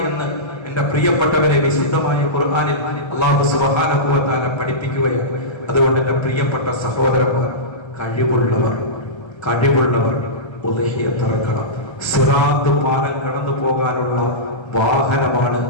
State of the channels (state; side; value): late; right; 1.3 ms